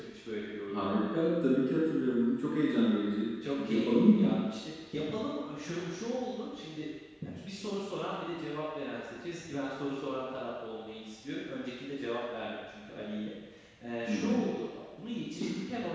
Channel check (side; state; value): both; identical; correlation 1.00